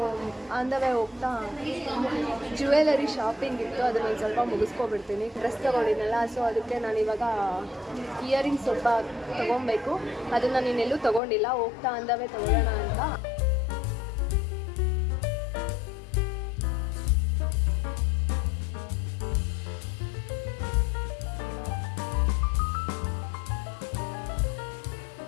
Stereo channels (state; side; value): drops out; right; at 11.2 s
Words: ಆನ್ ದ ವೇ ಹೋಗ್ತಾ ಜ್ಯುವೆಲರಿ ಶಾಪಿಂಗ್ ಇತ್ತು, ಅದನ್ನು ಒಂದು ಸ್ವಲ್ಪ ಮುಗಿಸ್ಕೊಬಿಡ್ತೀನಿ. ಡ್ರೆಸ್ ತೊಗೊಂಡಿದ್ನಲ್ಲ, ಸೊ ಅದಕ್ಕೆ ನಾನು ಇವಾಗ ಇಯರಿಂಗ್ಸ್ ಸ್ವಲ್ಪ ತೊಗೊಬೇಕು. ಅದನ್ನು ನಾನು ಇನ್ನೆಲ್ಲೂ ತೊಗೊಂಡಿಲ್ಲ, ಹೋಗ್ತಾ ಆನ್ ದ ವೇ ತೊಗೊಳ್ಳೋಣ ಅಂತ.